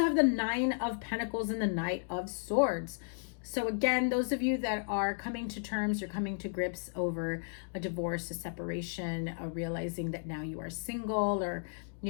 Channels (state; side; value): silent; right; digital silence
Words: have the Nine of Pentacles and the Knight of Swords. So again, those of you that are coming to terms or coming to grips over a divorce, a separation, realizing that now you are single, or,